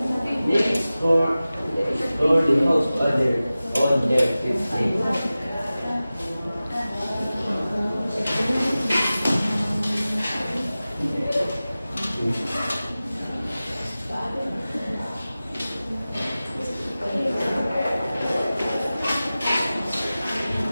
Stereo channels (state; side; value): inverted; both; correlation -0.96